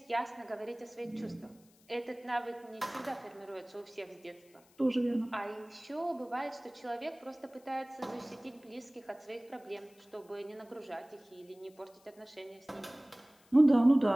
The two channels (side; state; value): left; noise; hiss, 29 dB below the sound